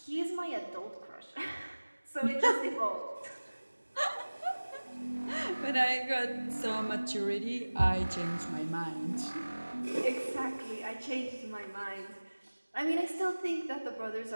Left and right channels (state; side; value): inverted; both; correlation -1.00